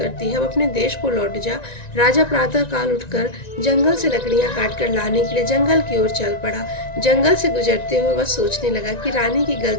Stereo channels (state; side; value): late; right; 1.9 ms